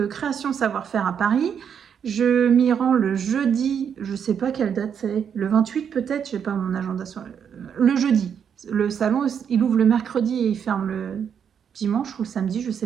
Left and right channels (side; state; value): left; quieter; 7.8 dB